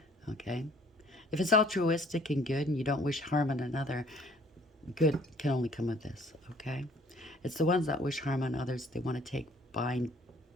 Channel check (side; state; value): both; normal; correlation 0.58